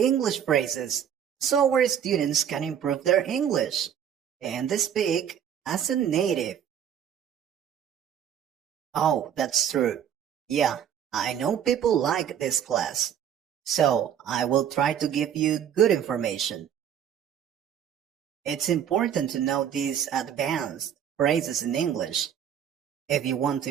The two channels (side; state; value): left; quieter; 9.1 dB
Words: phrases so our students can improve their English and they speak as a native. Oh, that's true. Yeah, I know people like this class. So I will try to give you good information. It's important to know these advanced phrases in English if you want to